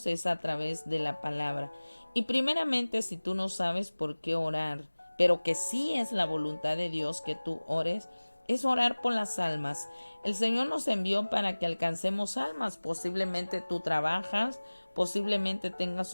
es a través de la palabra. Y primeramente, si tú no sabes por qué orar, pero que sí es la voluntad de Dios que tú ores, es orar por las almas. El Señor nos envió para que alcancemos almas. Posiblemente tú trabajas, posiblemente tengas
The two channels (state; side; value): inverted; both; correlation -1.00